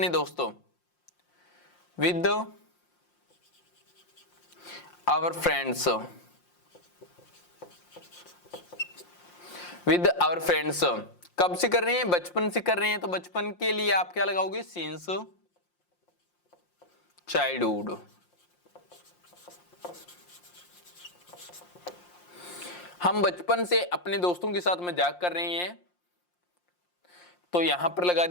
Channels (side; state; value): right; late; 5.7 ms